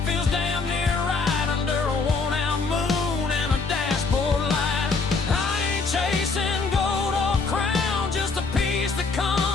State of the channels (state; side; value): quieter; right; 4.2 dB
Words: feels damn near right under a worn-out moon and a dashboard light. I ain't chasing gold or crown, just a piece that